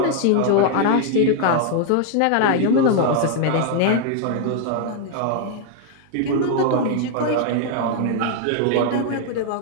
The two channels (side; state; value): both; different; correlation 0.00